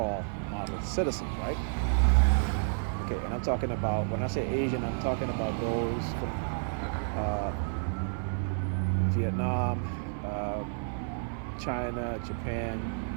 model citizens, right? Okay, and I'm talking about, when I say Asian, I'm talking about those from Vietnam, China, Japan,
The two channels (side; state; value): left; silent; 55 dB below the other